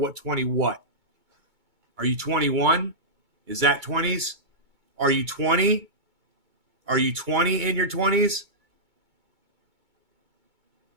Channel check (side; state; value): left; late; 2.2 ms